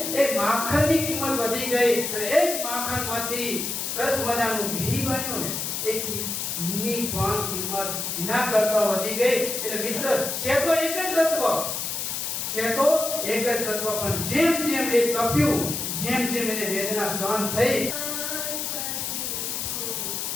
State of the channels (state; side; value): noise; left; hiss, 3 dB below the sound